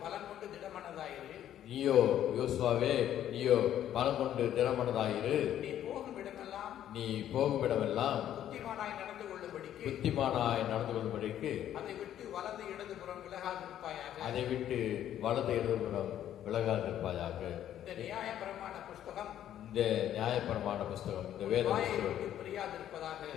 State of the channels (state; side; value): quieter; right; 11.2 dB